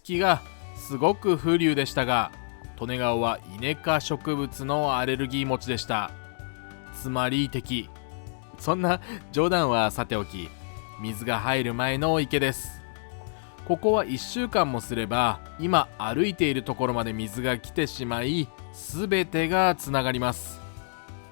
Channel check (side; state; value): right; silent; digital silence